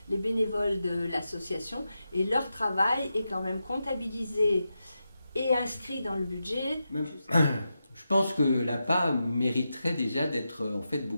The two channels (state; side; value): inverted; both; correlation -0.89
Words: les bénévoles de l'association et leur travail est quand même comptabilisé et inscrit dans le budget. Je pense que l'APA mériterait déjà d'être en fait